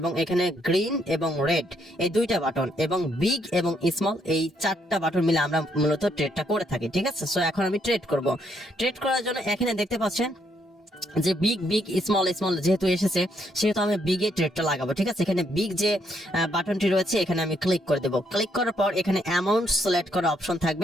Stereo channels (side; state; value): both; normal; correlation 0.73